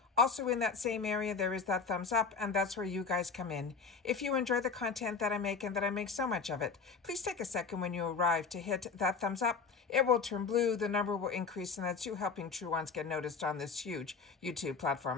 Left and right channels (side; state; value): right; quieter; 5.2 dB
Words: Also in that same area, there is that thumbs up, and that's where you guys come in. If you enjoy the content that I make and that I make so much of it, please take a second when you arrive to hit that thumbs up. It will turn blue, the number will increase, and that's you helping True Ones get noticed on this huge YouTube